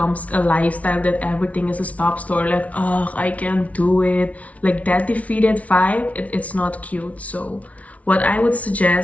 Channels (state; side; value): late; right; 0.067 ms